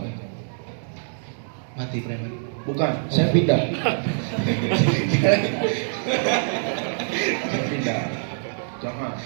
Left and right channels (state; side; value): silent; left; digital silence